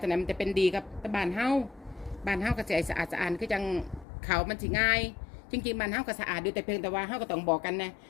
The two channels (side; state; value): right; drops out; at 4.0 s